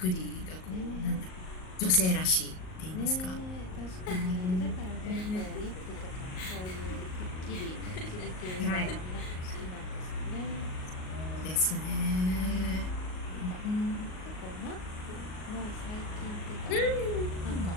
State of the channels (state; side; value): late; right; 38 ms